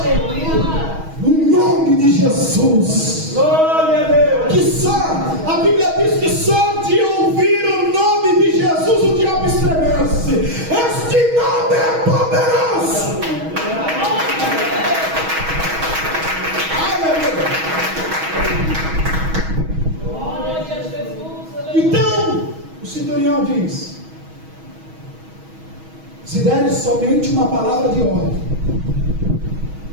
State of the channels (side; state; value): left; late; 6.3 ms